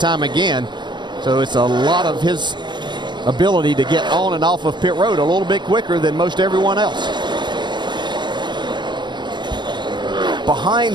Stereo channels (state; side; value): late; left; 0.22 ms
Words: again. So it's a lot of his ability to get on and off of pit road a little bit quicker than most everyone else.